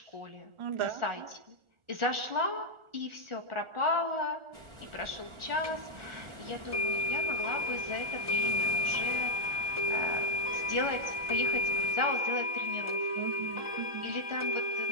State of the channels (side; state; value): left; late; 1.4 ms